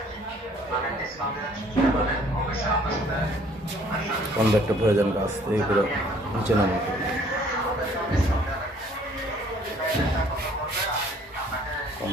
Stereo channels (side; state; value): both; normal; correlation 0.58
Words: কনভার্টটা প্রয়োজন কাজ এইগুলো নিচে নামাতে